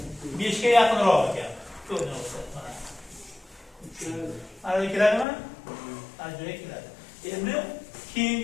5 ga yaqinroq ekan. To'g'ri mana. Mana keladimi? Mana joyga keladi. Endi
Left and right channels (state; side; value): drops out; right; at 5.2 s